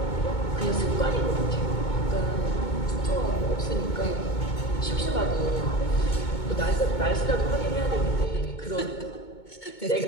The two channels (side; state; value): right; late; 2.2 ms